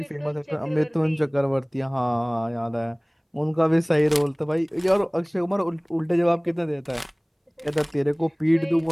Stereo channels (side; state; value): both; identical; correlation 1.00